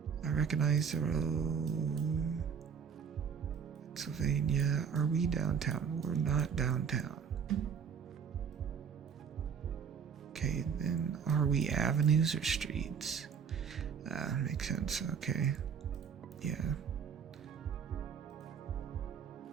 I recognize the road. Pennsylvania. Are we downtown? We're not downtown. Okay, then are we avenues or streets? Makes sense. Okay. Yeah.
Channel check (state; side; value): quieter; left; 6.9 dB